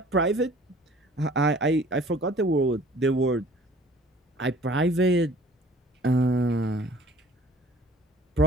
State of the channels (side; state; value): both; normal; correlation 0.50